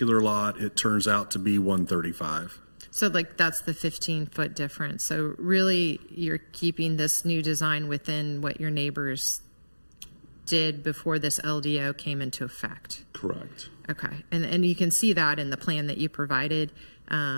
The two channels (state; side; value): inverted; both; correlation -1.00